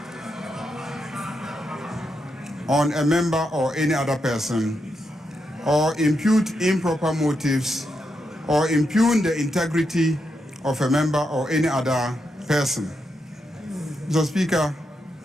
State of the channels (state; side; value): normal; both; correlation 0.84